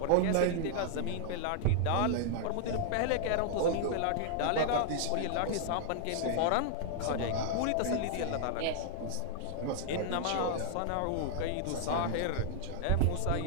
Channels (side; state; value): both; different; correlation -0.01